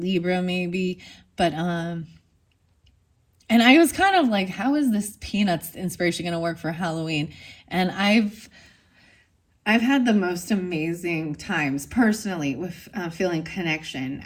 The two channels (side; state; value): both; identical; correlation 1.00